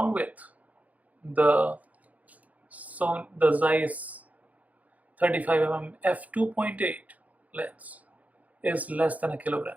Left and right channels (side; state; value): left; late; 0.074 ms